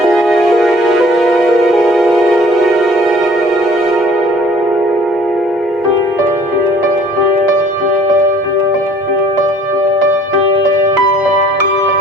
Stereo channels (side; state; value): both; normal; correlation 0.53